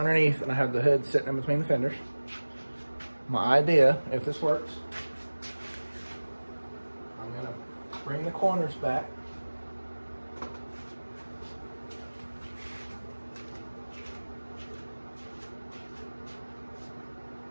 and I have the hood sitting in between the fenders. My idea, if this works, I'm gonna bring the corners back.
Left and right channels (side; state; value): both; inverted; correlation -1.00